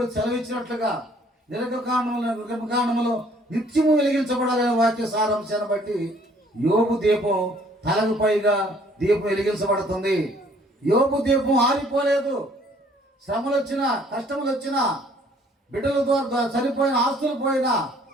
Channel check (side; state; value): both; normal; correlation 0.59